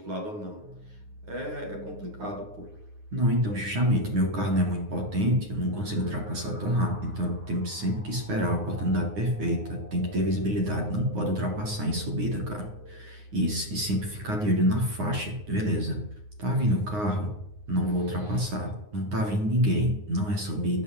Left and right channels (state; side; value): late; left; 9.6 ms